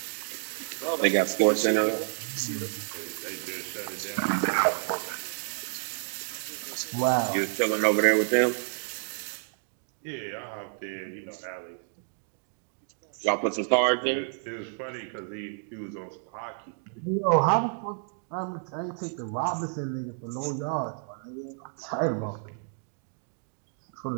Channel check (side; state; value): left; silent; 56 dB below the other